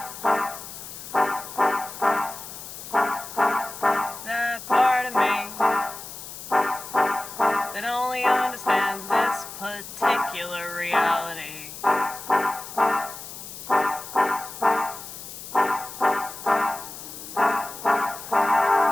That part of me that only understands this particular reality.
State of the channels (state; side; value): noise; left; hiss, 12 dB below the sound